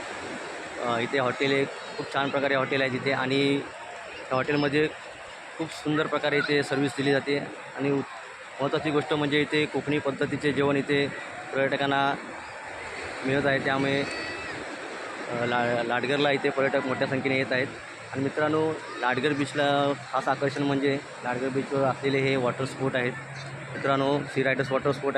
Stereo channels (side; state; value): both; identical; correlation 1.00